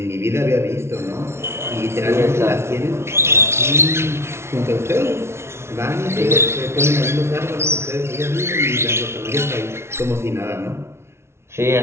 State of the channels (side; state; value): left; late; 0.13 ms